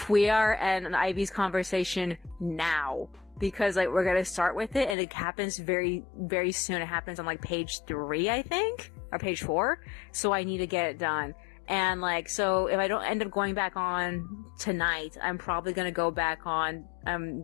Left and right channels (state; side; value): drops out; right; at 5.0 s